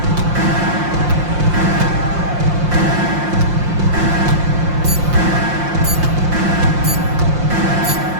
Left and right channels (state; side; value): late; left; 5.7 ms